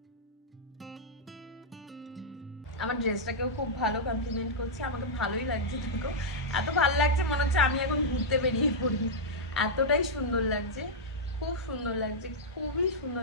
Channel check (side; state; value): both; normal; correlation -0.07